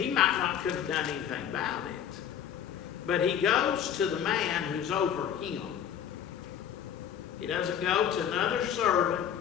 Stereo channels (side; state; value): right; quieter; 9.2 dB